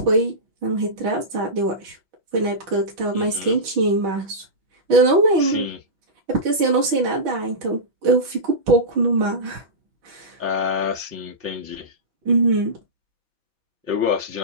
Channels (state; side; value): late; left; 6.2 ms